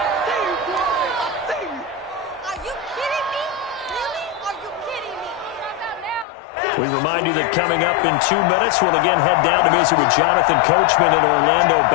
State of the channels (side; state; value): right; drops out; at 6.2 s